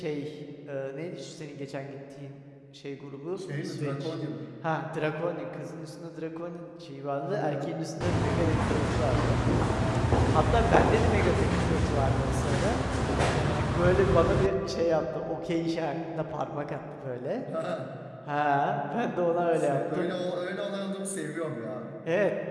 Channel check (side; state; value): both; identical; correlation 1.00